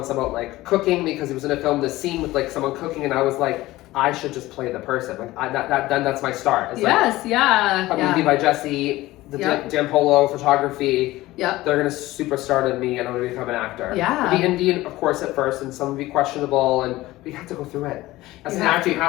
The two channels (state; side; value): quieter; right; 17.7 dB